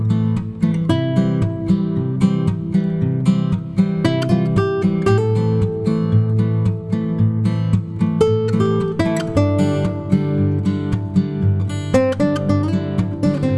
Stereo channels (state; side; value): identical; both; correlation 1.00